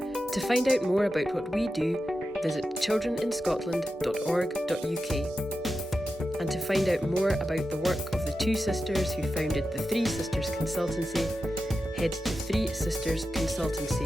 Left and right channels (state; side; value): normal; both; correlation 0.91